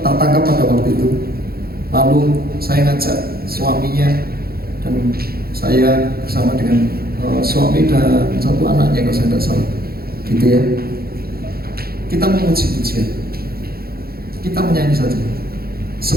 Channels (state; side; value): late; left; 0.44 ms